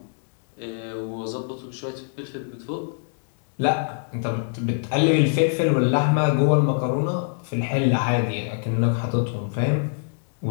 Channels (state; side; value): silent; right; digital silence